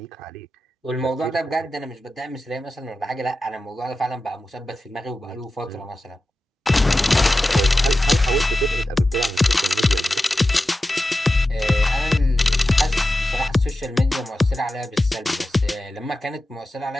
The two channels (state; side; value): normal; both; correlation 0.93